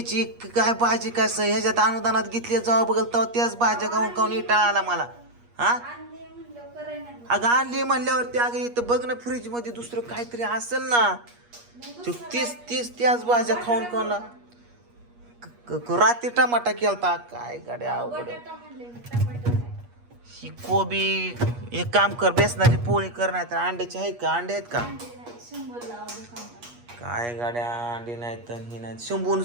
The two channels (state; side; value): late; left; 8.4 ms